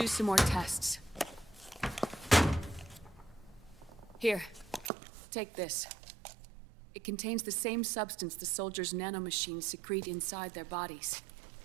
some more tests. Here, take this. It contains the same substance the soldiers' nanomachines secrete inside their bodies.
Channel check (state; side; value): drops out; left; at 4.9 s